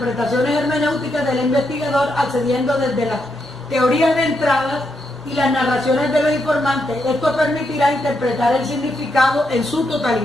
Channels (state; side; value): normal; both; correlation 0.81